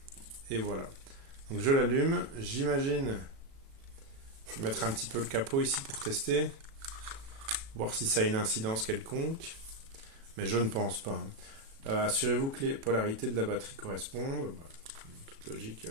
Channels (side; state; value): left; late; 36 ms